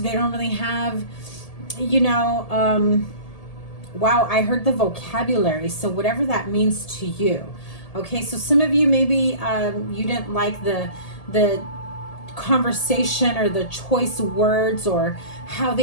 don't really have, you know, wow, I heard the vocabulary. So whatever that means to you. Okay, so some of you maybe you didn't like the conversation or the choice words, or how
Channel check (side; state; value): right; late; 1.7 ms